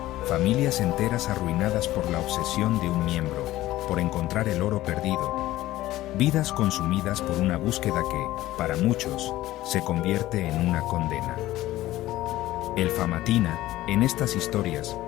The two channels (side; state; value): right; quieter; 15.9 dB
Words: Familias enteras arruinadas por la obsesión de un miembro, por encontrar el oro perdido. Vidas consumidas por una búsqueda que, para muchos, se convierte en una condena. El Famatina, en estas historias,